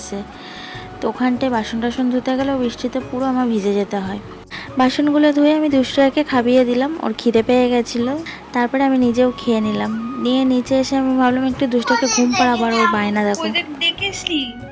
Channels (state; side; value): identical; both; correlation 1.00